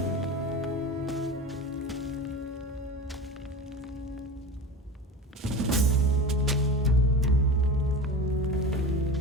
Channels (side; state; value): both; normal; correlation 0.30